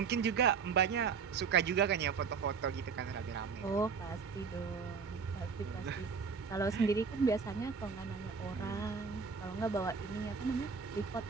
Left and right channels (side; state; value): left; quieter; 5.8 dB